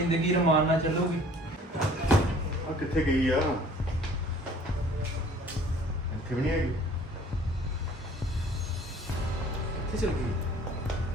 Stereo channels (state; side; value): normal; both; correlation 0.52